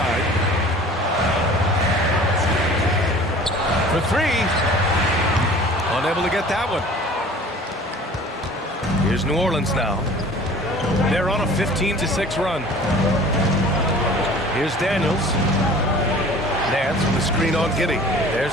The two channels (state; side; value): normal; both; correlation 0.46